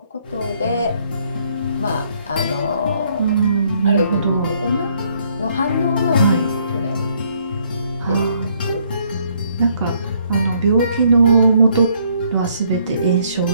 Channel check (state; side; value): inverted; both; correlation -0.67